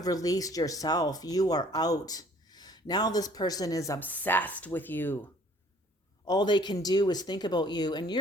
released yourself. You are out. Now this person is obsessed with you. All they can do is think about you, and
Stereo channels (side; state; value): both; normal; correlation 0.56